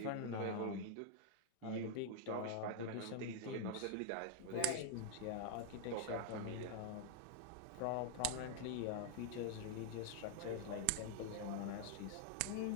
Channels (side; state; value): both; different; correlation 0.00